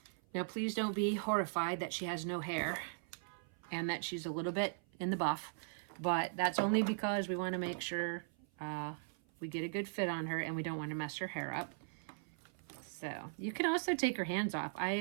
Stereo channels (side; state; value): left; silent; 52 dB below the other